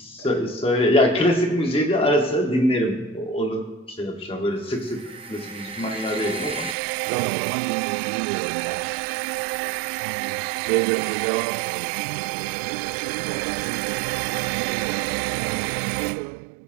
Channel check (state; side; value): drops out; left; at 6.8 s